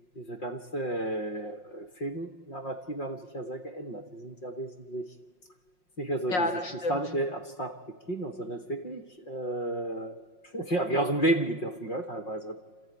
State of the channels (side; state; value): right; late; 5.6 ms